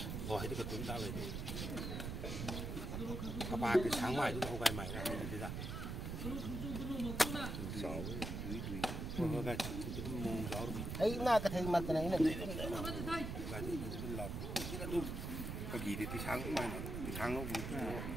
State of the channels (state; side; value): noise; right; rumble, 4 dB below the sound